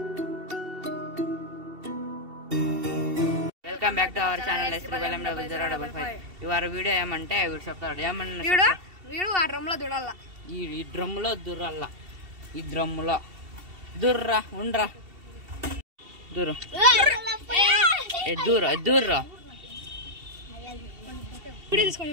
welcome back to our channel ఇవాళ వీడియో ఏమంటే వీడు చెప్తాడు ఏమన్నా వీడు ఆ డ్రమ్లో దూడాల ఈ డ్రమ్ములో దుర్రల్లా ఈ డ్రమ్ములో దుర్రా ఉండరా దూరం దూర్రా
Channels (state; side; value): late; left; 2.7 ms